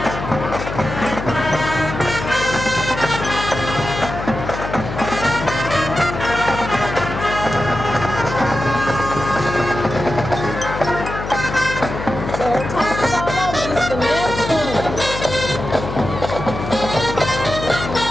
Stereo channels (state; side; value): noise; left; hum, 7 dB below the sound